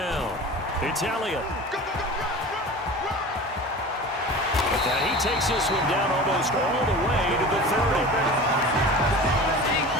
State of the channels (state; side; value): normal; both; correlation 0.36